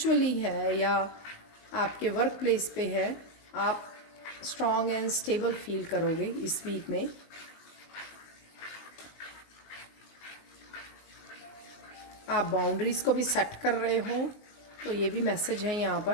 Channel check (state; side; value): late; right; 19 ms